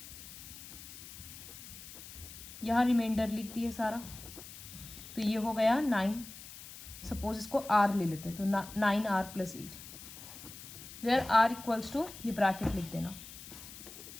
यहाँ रिमाइंडर लिख दिए सारा, तो ये हो गया 9। सपोज इसको r ले लेते हैं, तो 9r + 8, where r equals to ये ब्रैकेट लिख देना,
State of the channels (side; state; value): left; noise; hiss, 14 dB below the sound